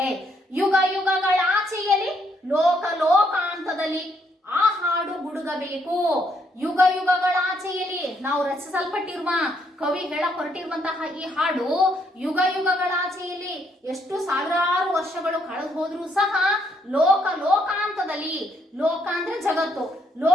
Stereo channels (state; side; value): normal; both; correlation 0.72